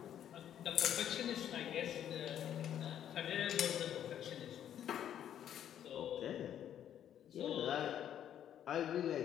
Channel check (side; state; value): right; quieter; 10.2 dB